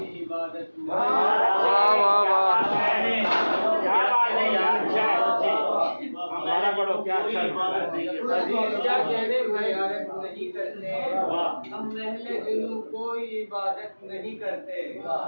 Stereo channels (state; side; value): inverted; both; correlation -1.00